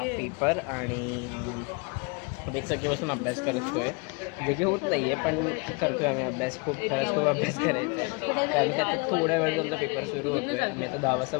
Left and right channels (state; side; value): quieter; right; 30.5 dB